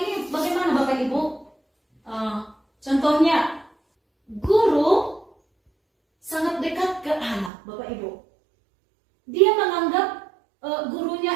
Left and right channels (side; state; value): left; drops out; at 7.5 s